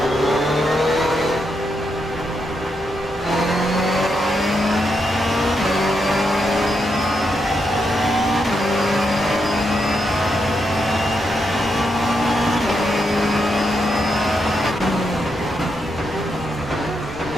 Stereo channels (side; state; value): both; normal; correlation 0.82